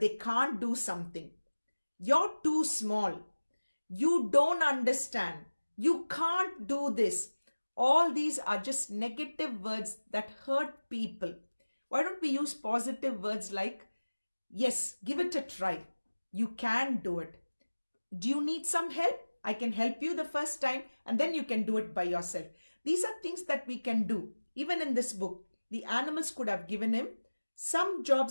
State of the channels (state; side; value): inverted; both; correlation -1.00